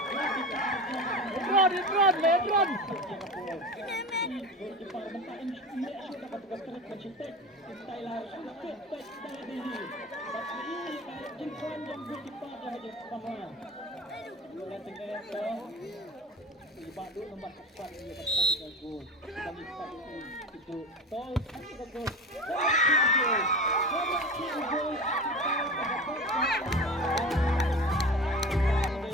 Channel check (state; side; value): normal; both; correlation 0.31